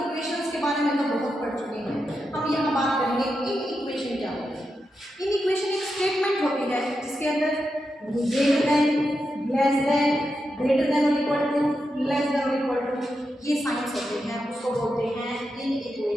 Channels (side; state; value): both; normal; correlation 0.87